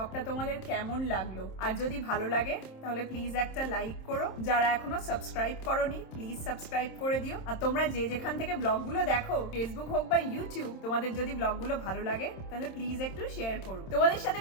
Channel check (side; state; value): right; late; 27 ms